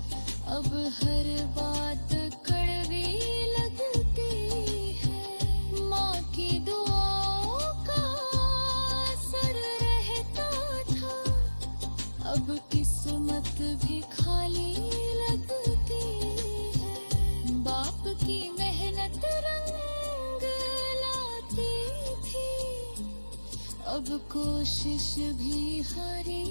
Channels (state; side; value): inverted; both; correlation -1.00